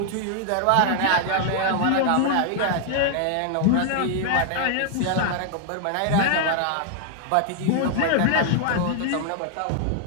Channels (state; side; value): different; both; correlation 0.00